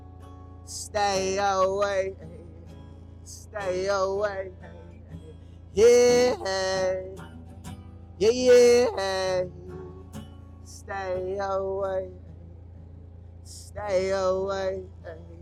Stay away, stay away. Yeah, hey, yeah, yeah, hey. Stay away, stay away.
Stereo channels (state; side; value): identical; both; correlation 1.00